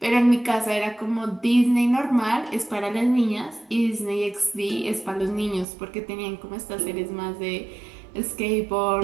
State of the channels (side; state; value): left; drops out; at 5.7 s